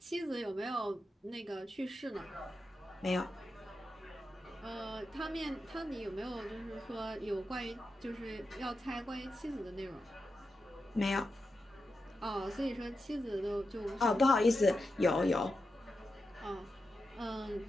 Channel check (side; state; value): both; normal; correlation 0.89